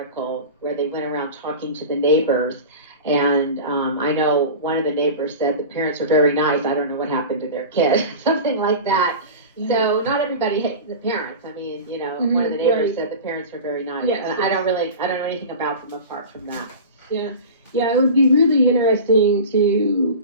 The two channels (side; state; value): both; inverted; correlation -0.32